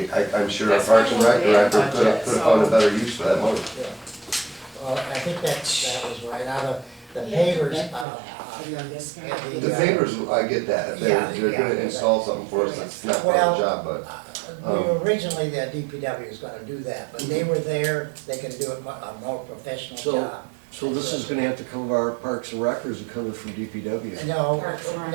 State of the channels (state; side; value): drops out; left; at 8.1 s